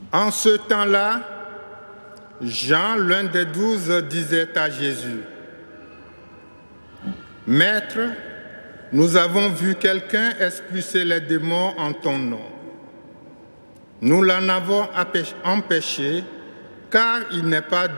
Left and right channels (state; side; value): inverted; both; correlation -1.00